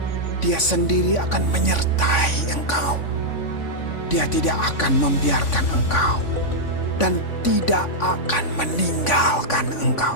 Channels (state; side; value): late; right; 3.5 ms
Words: Dia sendiri akan menyertai engkau. Dia tidak akan membiarkan engkau dan tidak akan meninggalkan